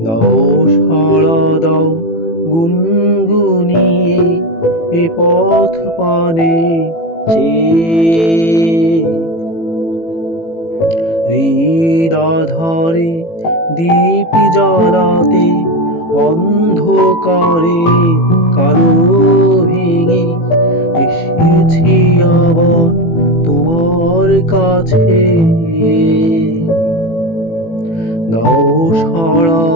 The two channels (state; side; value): late; right; 18 ms